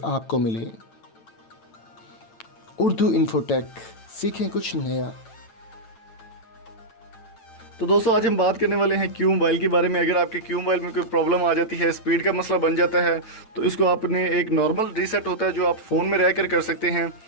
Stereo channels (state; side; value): late; right; 9.0 ms